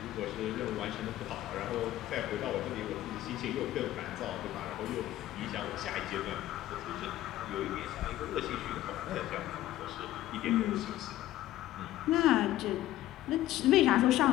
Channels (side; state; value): right; quieter; 14.4 dB